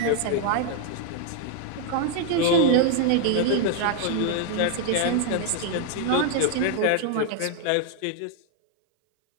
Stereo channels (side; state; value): both; different; correlation 0.00